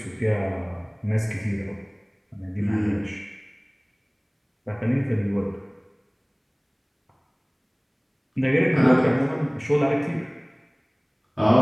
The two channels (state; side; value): identical; both; correlation 1.00